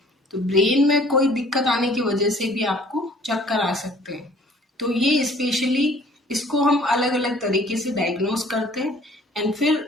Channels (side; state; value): both; normal; correlation 0.54